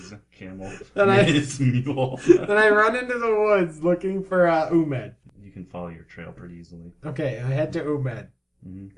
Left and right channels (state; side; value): identical; both; correlation 1.00